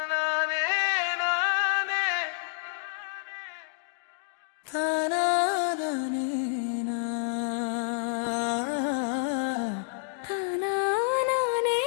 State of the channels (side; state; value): right; silent; digital silence